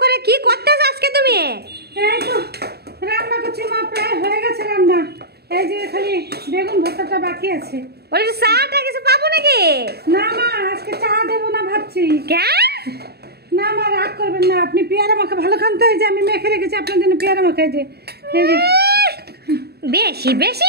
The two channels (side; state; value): left; late; 0.47 ms